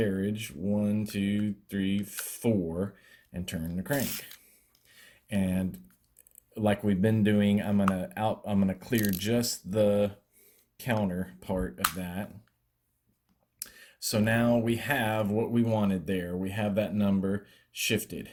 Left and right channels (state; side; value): identical; both; correlation 1.00